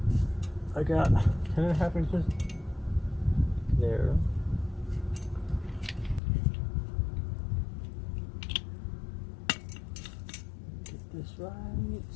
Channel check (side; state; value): right; drops out; at 6.2 s